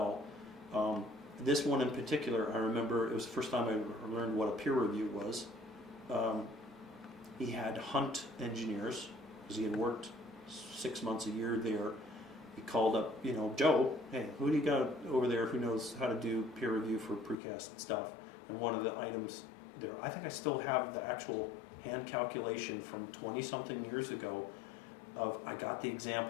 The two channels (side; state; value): right; drops out; at 17.4 s